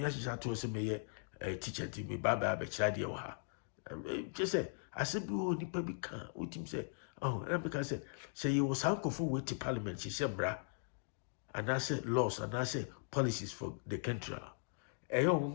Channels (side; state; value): right; silent; digital silence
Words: she had to say me a teacher to me, Baba Bechadi or her. Just say, I said, oh, nipa be can with him say, oh, and because say you was uncle for way to parliament, she said, bra, and I said laws and I said policies for the country. Eyo